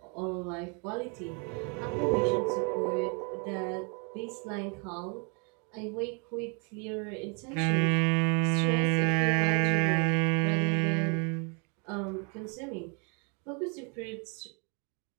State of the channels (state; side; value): quieter; left; 35.4 dB